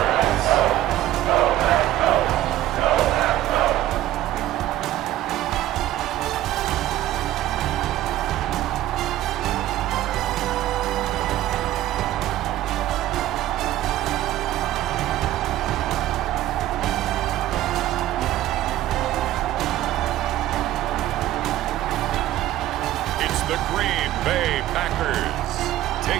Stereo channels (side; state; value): left; quieter; 14.2 dB